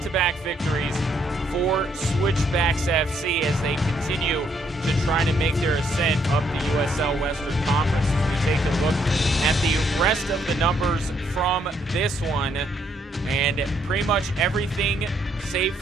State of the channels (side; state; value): both; normal; correlation 0.71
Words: victories for Switchbacks FC as they continue to try to make their ascent up the USL Western Conference. As we take a look at the rest of the numbers from this one, and pretty much everything save